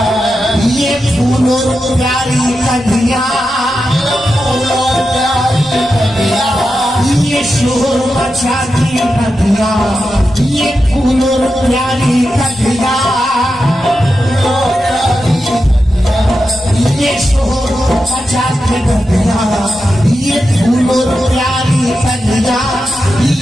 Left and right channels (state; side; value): normal; both; correlation 0.89